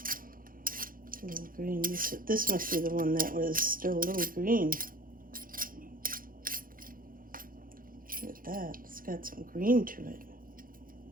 A little green. This must be the one that was still a little green. Look at that. It's got some green to it.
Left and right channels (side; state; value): left; late; 0.41 ms